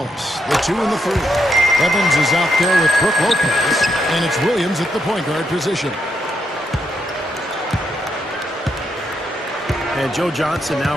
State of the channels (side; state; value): both; normal; correlation 0.80